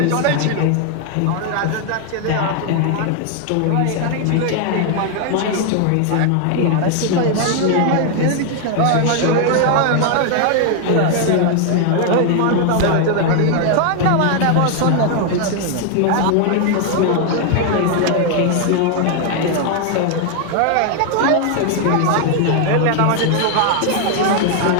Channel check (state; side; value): different; both; correlation 0.00